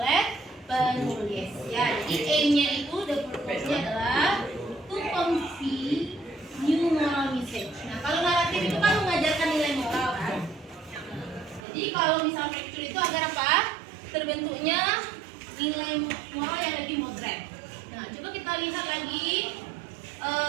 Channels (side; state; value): left; drops out; at 11.7 s